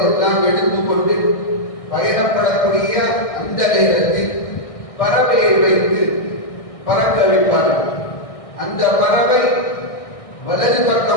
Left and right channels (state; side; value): late; right; 1.6 ms